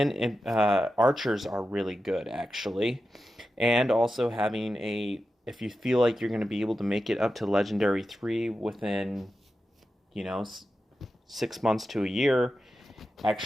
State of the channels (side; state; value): both; normal; correlation 0.91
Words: archers are really good actually, and also having a if you feel like you're going to be able to make it up to legendary 3 within you know 6 months to a year,